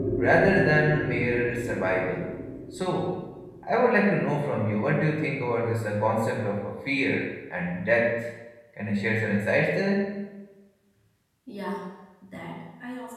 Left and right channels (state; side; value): identical; both; correlation 1.00